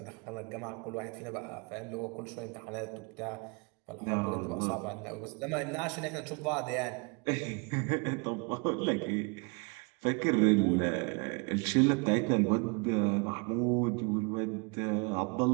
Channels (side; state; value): left; quieter; 32.8 dB